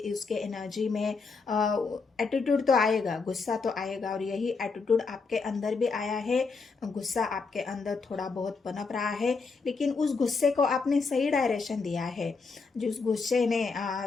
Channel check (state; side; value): quieter; right; 4.5 dB